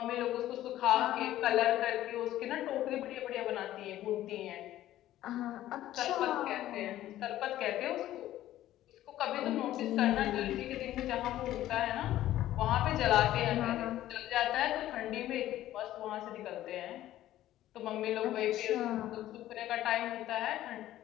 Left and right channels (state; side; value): quieter; right; 13.8 dB